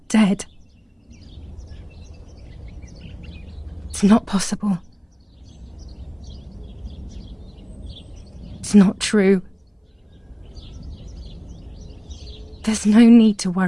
dead. It's not possible. It's not true. There's no need to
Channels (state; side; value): identical; both; correlation 1.00